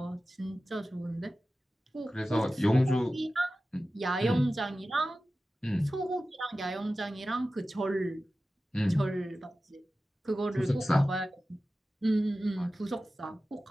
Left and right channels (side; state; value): both; normal; correlation 0.95